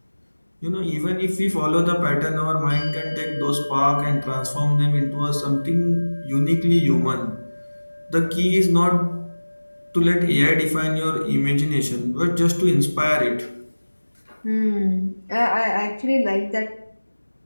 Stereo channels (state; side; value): inverted; both; correlation -1.00